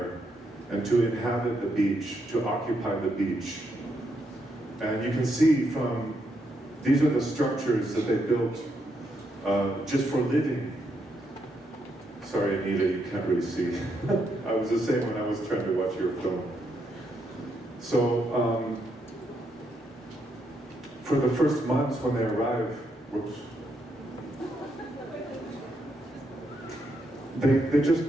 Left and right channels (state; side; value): normal; both; correlation 0.79